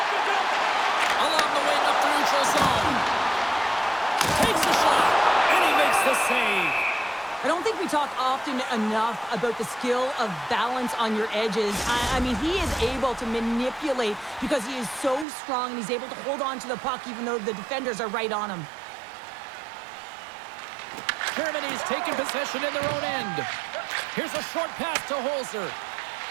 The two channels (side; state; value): left; drops out; at 15.2 s